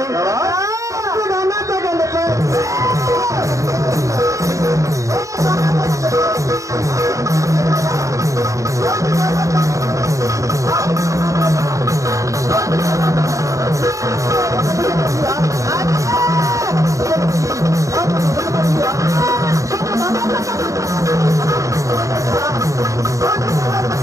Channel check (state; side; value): late; left; 0.16 ms